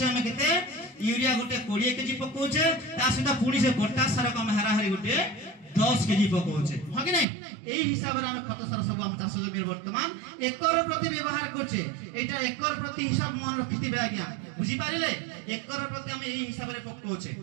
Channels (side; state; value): left; drops out; at 7.2 s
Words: हमें केते यूरिया गोटे 20 केजी पकोचे ता सहित पुनी से पोटास सार को हम हाराहारी गोटे 10 केजी पकोचे हो कि नहीं एही हिसाब रे हम खत सार सब हम चाष जमीन वर्तमान एकर प्रति व्यवहार करछे एटा एकर प्रति हिसाब मन रखितिबे आज्ञा बुझी पारिले एकर प्रति हम एही हिसाब रे पकोचे